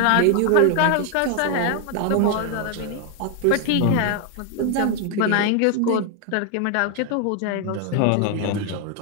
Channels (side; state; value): both; different; correlation 0.00